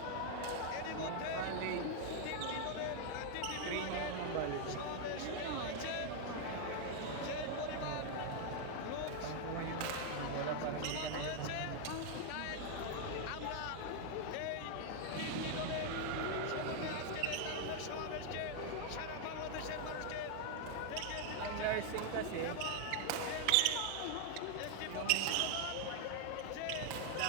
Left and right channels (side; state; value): both; different; correlation 0.00